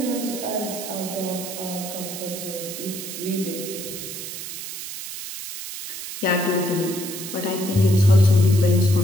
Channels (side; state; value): right; noise; hiss, 8 dB below the sound